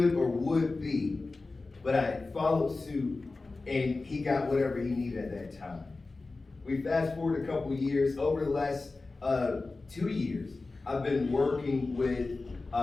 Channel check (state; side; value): quieter; right; 3.6 dB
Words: or would be, but I followed suit, and he got whatever he needed at that time. We fast forward a couple years. Over the last 2 years, I've been working with